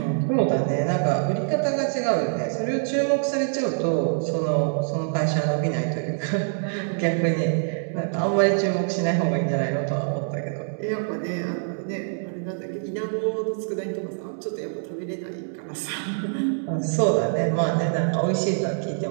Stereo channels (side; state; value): left; silent; digital silence